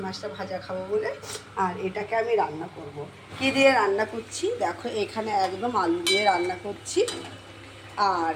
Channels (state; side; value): identical; both; correlation 1.00